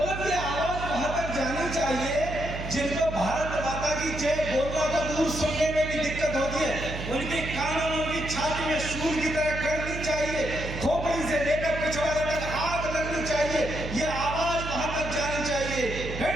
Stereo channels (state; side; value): noise; right; hum, 7 dB below the sound